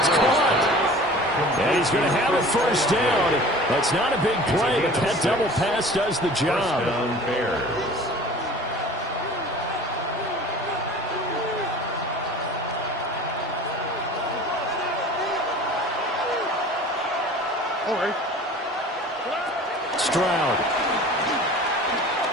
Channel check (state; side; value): normal; both; correlation 0.42